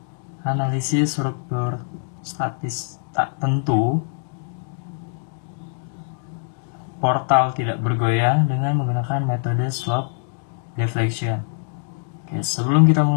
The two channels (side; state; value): right; silent; digital silence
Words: analisis struktur statis tak tentu portal tidak bergoyang dengan menggunakan metode slope deflection. Oke, sebelum kita